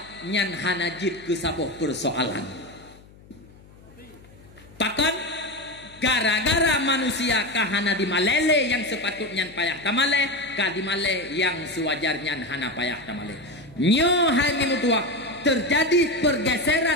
nyan hanajit ke sabah persoalan. Pakan gara-gara manusia kahana di malele yang sepatutnya payah tamale, ka di male yang sewajarnya hana payah tamale. Nyo hai mutua terjadi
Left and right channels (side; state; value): left; noise; hum, 24 dB below the sound